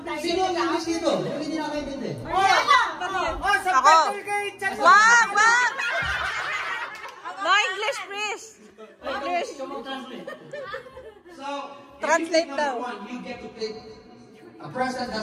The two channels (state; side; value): identical; both; correlation 1.00